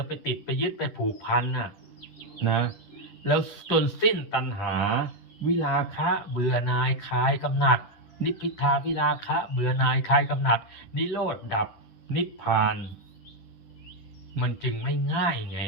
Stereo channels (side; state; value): right; late; 10 ms